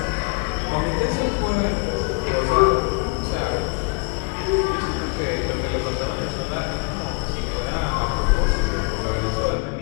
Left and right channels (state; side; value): quieter; right; 32.6 dB